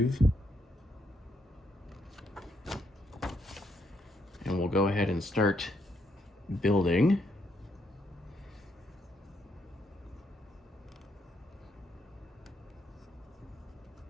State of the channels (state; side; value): normal; both; correlation 0.75